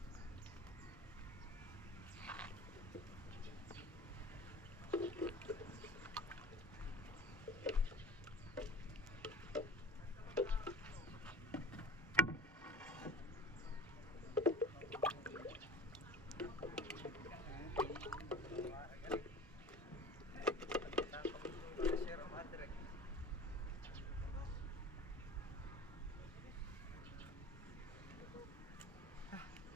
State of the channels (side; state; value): both; normal; correlation 0.37